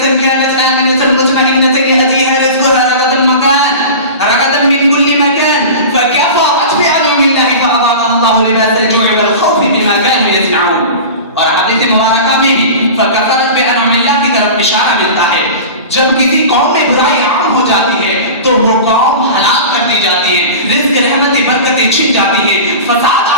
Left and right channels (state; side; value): inverted; both; correlation -0.32